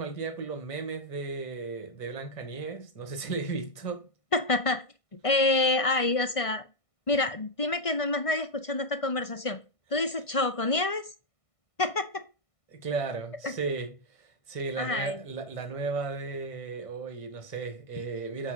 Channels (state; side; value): late; right; 1.5 ms